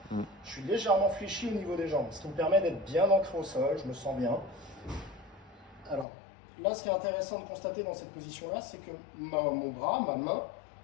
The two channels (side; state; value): right; drops out; at 6.1 s